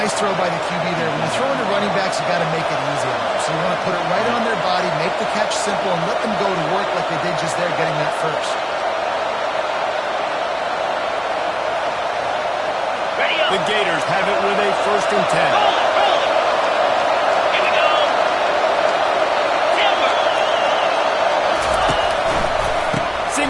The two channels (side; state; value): both; identical; correlation 1.00